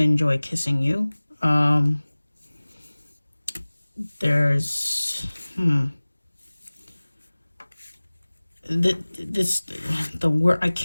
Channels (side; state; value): both; inverted; correlation -1.00